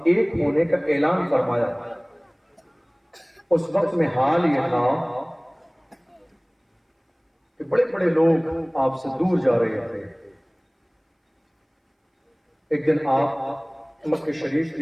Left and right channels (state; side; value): identical; both; correlation 1.00